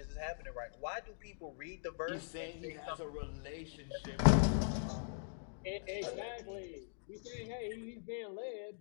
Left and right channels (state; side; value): silent; right; digital silence